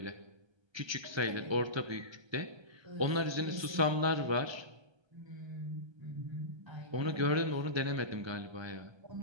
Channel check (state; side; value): late; left; 1.3 ms